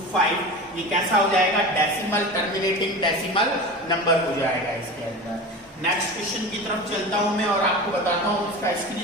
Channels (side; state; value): both; normal; correlation 0.30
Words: ये कैसा हो जाएगा, डेसिमल टर्मिनेटिंग डेसिमल नंबर हो जाएगा इसके अंदर। नेक्स्ट क्वेश्चन की तरफ चलता हूं मैं और आपको बताता हूं